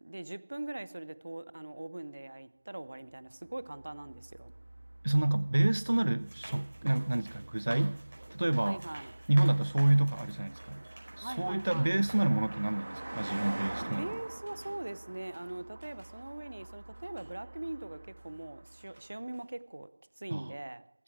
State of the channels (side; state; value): both; inverted; correlation -1.00